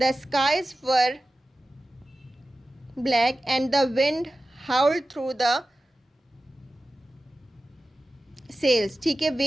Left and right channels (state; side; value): normal; both; correlation 0.94